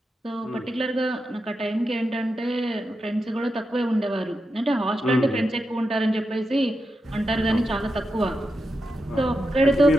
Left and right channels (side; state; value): both; normal; correlation 0.88